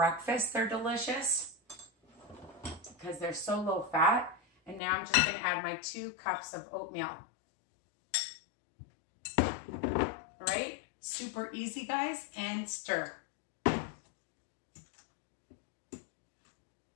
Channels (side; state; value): right; drops out; at 4.8 s